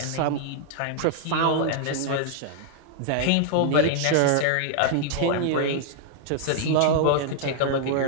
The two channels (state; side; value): different; both; correlation -0.01